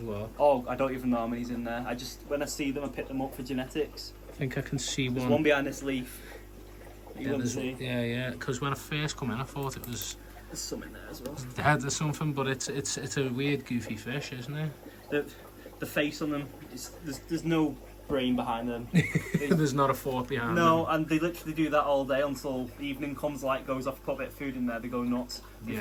well. Oh, I don't even know how many's in there. When I see them, I pick them up for genetics. I think I can see There's one. one behind this leaf. Yeah. Because when I first come in, I thought it was. There's some in there as well. There's something, but it's a weird, goofy fish, isn't it? The face on them, there's no brain behind them. There's not a fork behind them. No, and they literally do that all day until evening comes, light goes off, put a bit of food in there, they go nuts. If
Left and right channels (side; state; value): both; identical; correlation 1.00